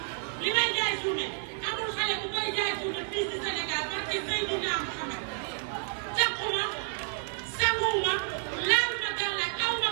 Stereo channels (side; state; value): left; silent; 58 dB below the other